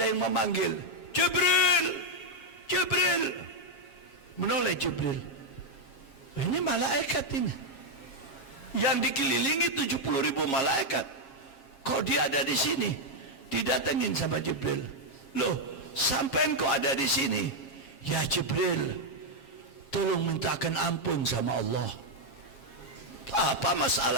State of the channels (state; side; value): late; right; 7.3 ms